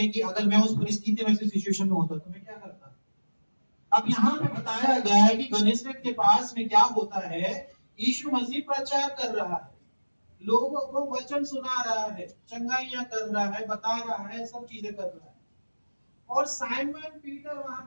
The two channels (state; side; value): inverted; both; correlation -1.00